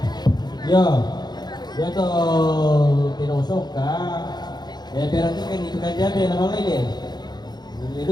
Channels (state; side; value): late; right; 0.20 ms